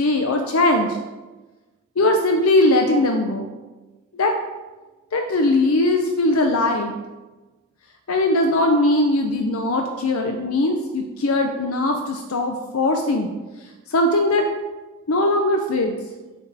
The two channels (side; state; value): both; normal; correlation 0.07